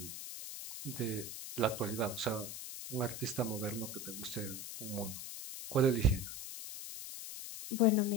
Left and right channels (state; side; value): noise; left; hiss, 8 dB below the sound